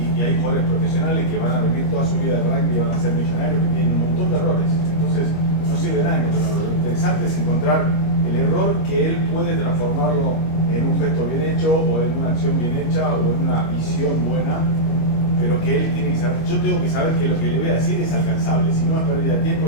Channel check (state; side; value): late; right; 25 ms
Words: y hay jugadores profesionales que van a vivir toda su vida de rugby y van a ser millonarios que tienen un montón de errores. Entonces no sirve de nada encontrar un error. Lo interesante es encontrar el error que él puede transformarlo en un gesto bien hecho o en una acción bien hecha o en una visión buena, pero que él tiene que saber. Yo tengo que saber que lo que le voy a decir es alcanzable, si no es pérdida de tiempo